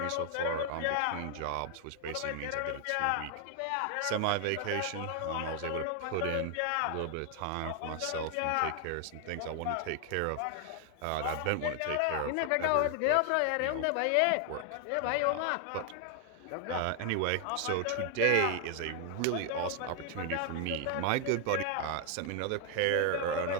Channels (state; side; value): different; both; correlation 0.00